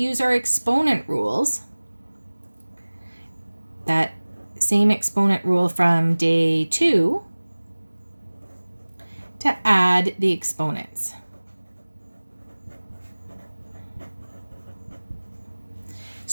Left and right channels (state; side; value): inverted; both; correlation -1.00